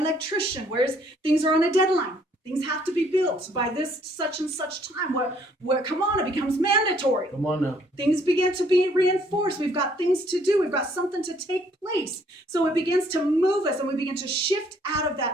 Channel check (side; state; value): both; normal; correlation 0.64